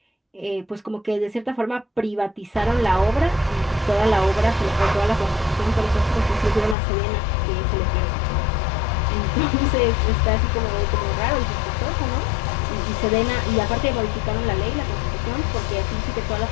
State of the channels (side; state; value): right; drops out; at 6.8 s